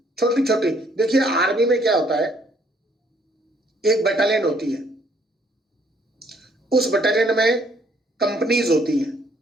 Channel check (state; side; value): normal; both; correlation 0.65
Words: छोटी छोटी। देखिए आर्मी में क्या होता है, एक बटालियन होती है, उस बटालियन में कंपनीज होती हैं